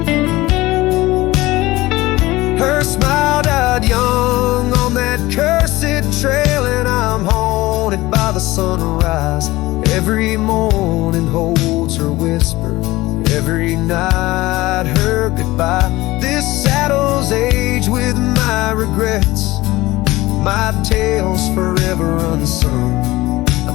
Her smile died young on that cursed trail, and I'm haunted by the sunrise. Every morning holds her whisper, every night her goodbye. This saddle's age with my regrets, my tale's forever unsung.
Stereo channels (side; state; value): right; quieter; 19.0 dB